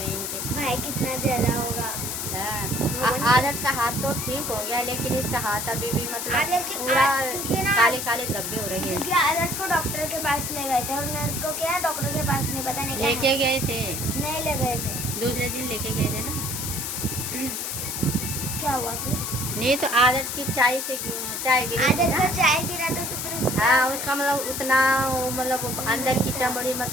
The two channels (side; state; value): left; noise; hiss, 4 dB below the sound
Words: इनके। भाई कितना जला होगा। आदर्श का हाथ तो ठीक हो गया लेकिन इसका हाथ अभी भी मतलब पूरा काले काले धब्बे हो रहे हैं। क्योंकि आदर्श को डॉक्टर के पास ले गए थे और मेरे को क्या डॉक्टर के पास नहीं, पता नहीं क्या लेके गए थे, नहीं ले गए थे, दूसरे दिन लेके गए थे ना। क्या हुआ फिर? नहीं तो आदर्श की चाय गिरी, आदर्श का चाय गिरा था तो फिर उसका हाँ, उसका मतलब उतना मतलब अंदर की चमड़ी